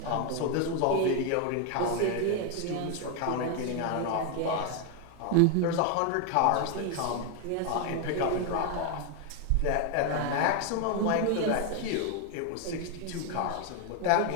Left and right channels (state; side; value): different; both; correlation 0.01